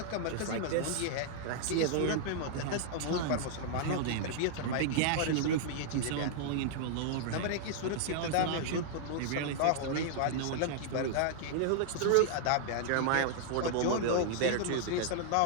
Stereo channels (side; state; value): both; different; correlation -0.01